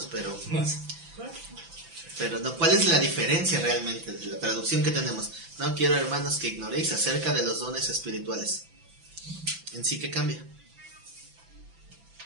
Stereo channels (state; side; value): late; left; 5.9 ms